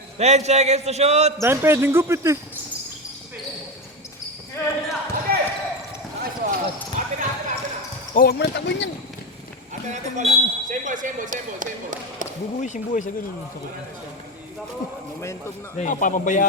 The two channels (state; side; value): normal; both; correlation 0.17